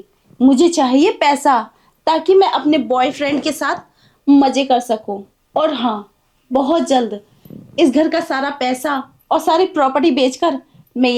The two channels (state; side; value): identical; both; correlation 1.00